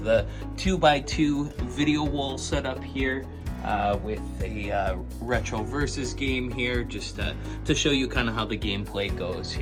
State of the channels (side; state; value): both; identical; correlation 1.00